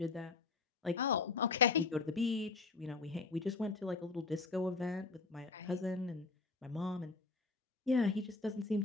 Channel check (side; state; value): right; quieter; 4.2 dB